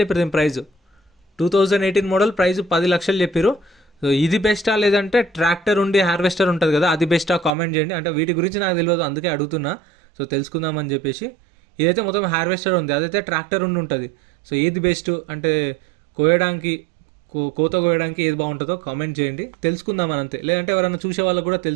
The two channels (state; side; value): drops out; left; at 7.5 s